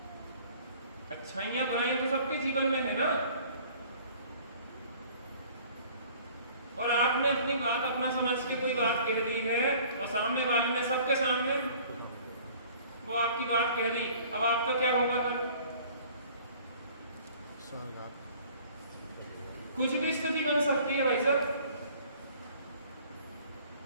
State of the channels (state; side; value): inverted; both; correlation -0.51